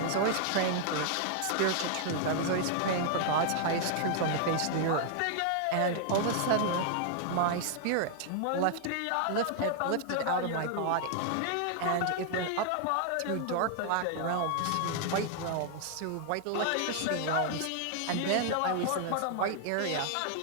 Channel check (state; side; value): different; both; correlation 0.00